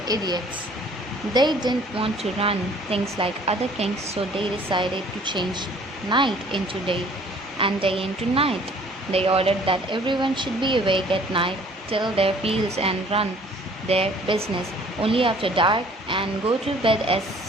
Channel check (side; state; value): both; normal; correlation 0.55